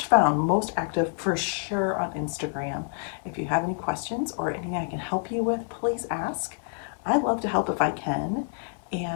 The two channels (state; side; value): silent; right; 60 dB below the other